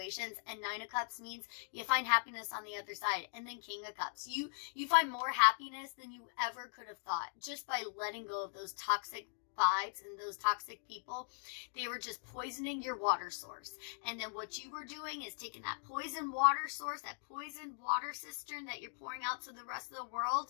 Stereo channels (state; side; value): silent; right; digital silence